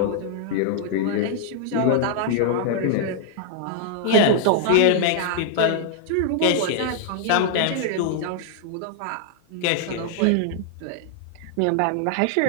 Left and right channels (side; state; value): both; different; correlation -0.01